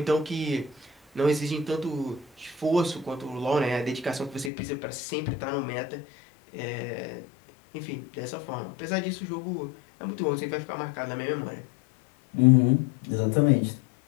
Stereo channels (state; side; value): drops out; right; at 4.5 s